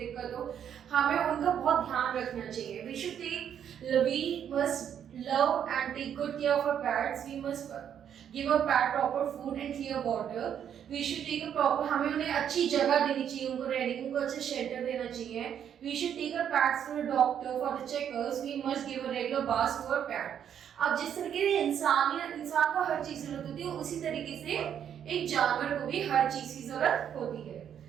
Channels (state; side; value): quieter; left; 9.0 dB